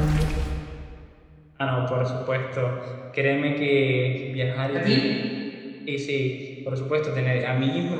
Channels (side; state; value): both; identical; correlation 1.00